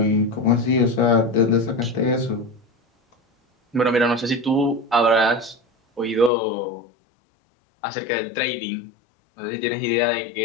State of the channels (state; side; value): drops out; right; at 6.3 s